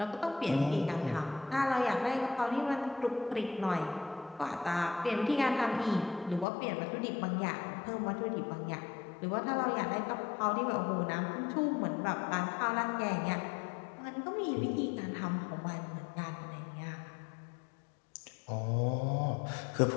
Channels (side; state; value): right; drops out; at 6.5 s